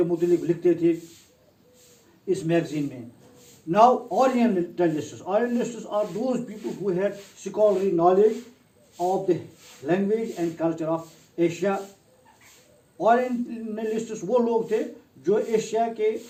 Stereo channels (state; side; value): identical; both; correlation 1.00